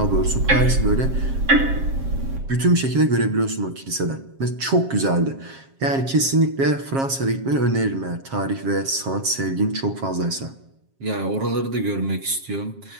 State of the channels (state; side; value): late; left; 7.4 ms